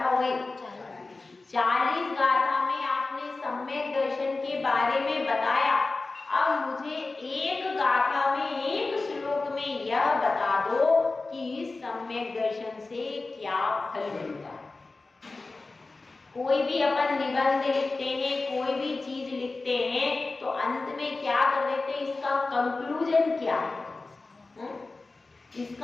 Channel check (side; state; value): right; quieter; 3.5 dB